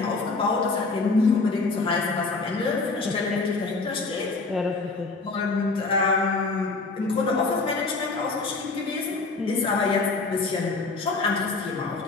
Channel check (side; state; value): right; quieter; 3.8 dB